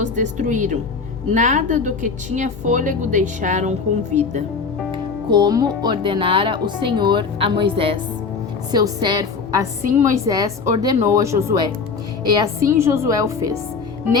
destruíram. Nada do que tinha fôlego deixaram com vida, como ordenara o Senhor a Moisés, seu servo. Assim Moisés ordenou a Josué, e assim Josué o fez.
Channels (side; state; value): right; quieter; 5.0 dB